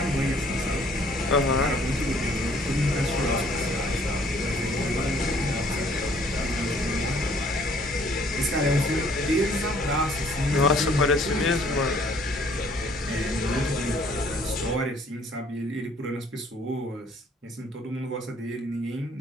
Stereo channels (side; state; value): both; normal; correlation 0.60